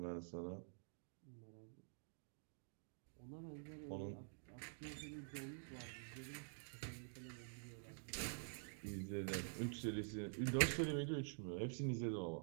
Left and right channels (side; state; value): left; silent; digital silence